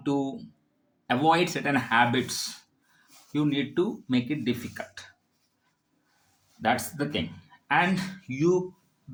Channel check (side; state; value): both; identical; correlation 1.00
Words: to avoid certain habits, you need to make it difficult. That's the thing. And you